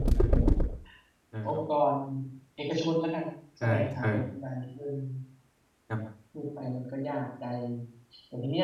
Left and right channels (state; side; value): identical; both; correlation 1.00